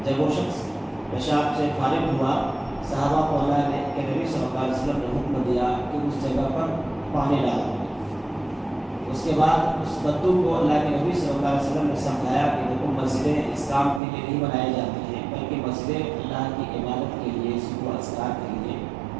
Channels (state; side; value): drops out; left; at 14.0 s